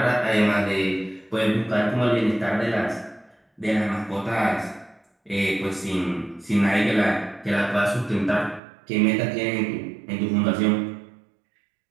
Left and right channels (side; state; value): left; drops out; at 8.6 s